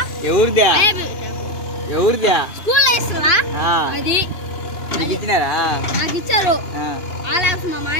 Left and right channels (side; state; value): right; late; 2.9 ms